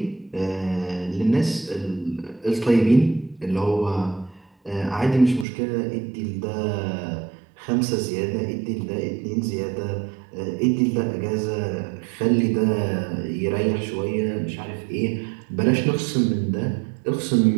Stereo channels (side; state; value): left; drops out; at 5.5 s